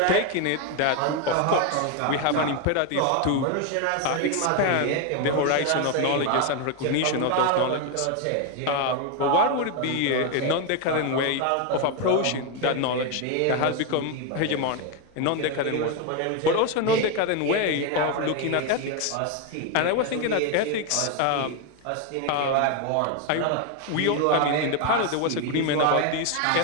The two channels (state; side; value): different; both; correlation 0.02